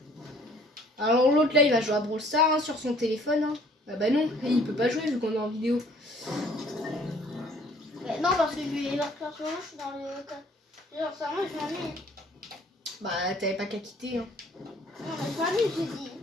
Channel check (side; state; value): both; normal; correlation 0.57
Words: Alors, l'autre là, il va jouer à Brawl Stars hein, sur son téléphone. Hein. Ah bah non, il peut pas jouer vu qu'on est en vidéo. Mais non, parce que je suis dans le. Genre, ça, moi, je m'ennuie. Bah, t'avais pas qu'à quitter. Hein. Non, mais je m'ennuie, j'ai dit.